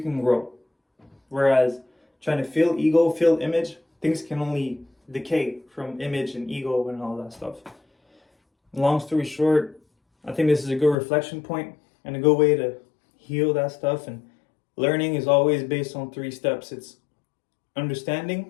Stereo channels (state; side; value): drops out; right; at 11.0 s